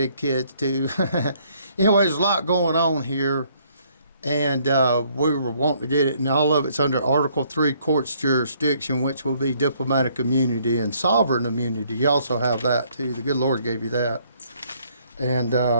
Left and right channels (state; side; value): inverted; both; correlation -0.65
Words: kids, too. Anyway, there's a lot going on here, and we were wanting to get it, and all of it's under Article 3 court's jurisdiction, which will be diplomatic immunity and sovereign immunity. You also have that, too. The good Lord gave you that. And